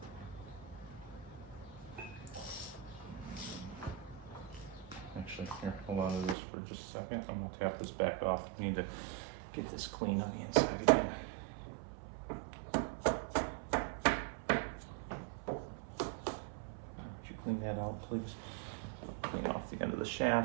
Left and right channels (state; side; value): drops out; left; at 6.4 s